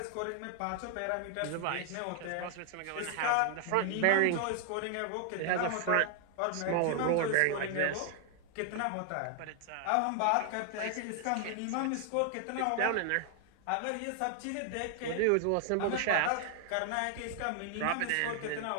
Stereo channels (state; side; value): different; both; correlation 0.00